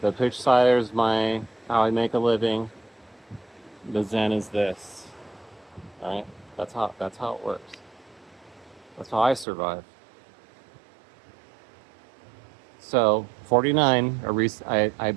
The Pooch Cider is how I make a living. The Zen is this. All right? That's how it works. That's how I survive. So 49, I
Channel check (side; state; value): left; drops out; at 9.5 s